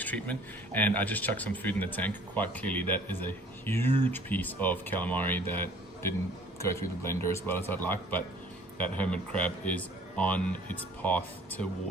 treatment, and I just chucked some food in the tank. Quite clearly that is a huge piece of calamari that didn't go through the blender as well as I'd like, but that hermit crab is on its path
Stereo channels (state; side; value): normal; both; correlation 0.53